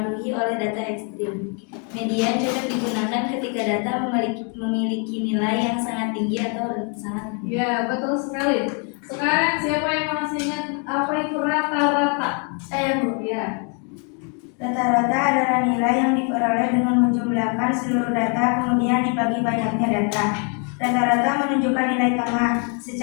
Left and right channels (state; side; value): quieter; right; 38.7 dB